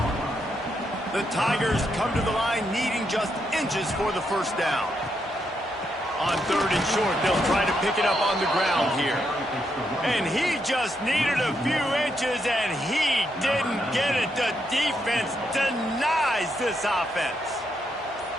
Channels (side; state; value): both; normal; correlation 0.80